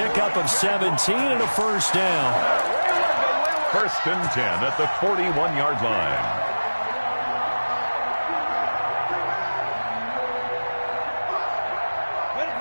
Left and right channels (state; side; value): inverted; both; correlation -1.00